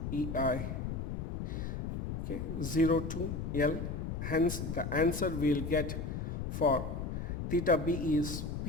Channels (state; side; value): noise; left; rumble, 3 dB below the sound